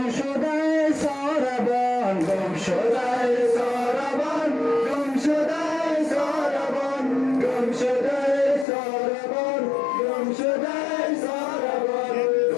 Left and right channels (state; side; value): drops out; right; at 8.7 s